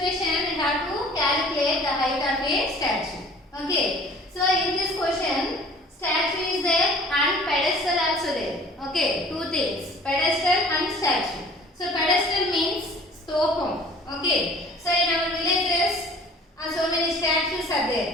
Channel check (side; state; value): both; normal; correlation 0.49